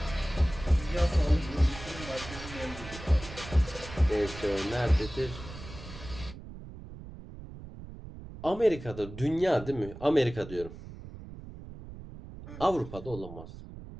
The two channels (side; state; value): right; noise; rumble, 13 dB below the sound